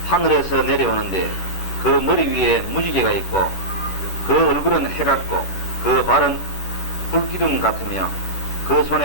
하늘에서 내려오는데 그 머리 위에 무지개가 있고 그 얼굴은 해 같고 그 발은 불기둥 같으며 그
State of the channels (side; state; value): right; late; 11 ms